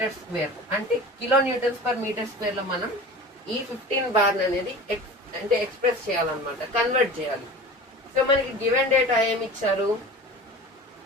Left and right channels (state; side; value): normal; both; correlation 0.37